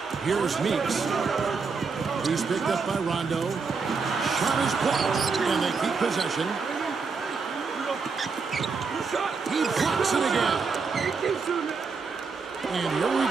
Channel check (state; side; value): quieter; left; 4.9 dB